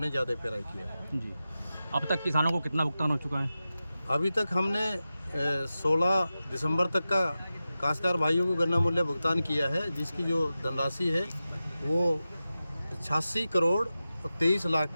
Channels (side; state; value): both; inverted; correlation -0.93